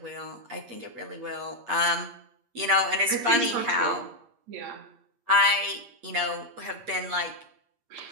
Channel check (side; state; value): left; late; 8.6 ms